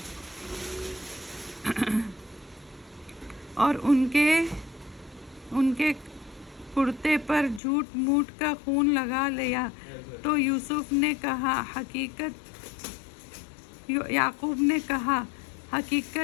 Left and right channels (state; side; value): drops out; right; at 7.6 s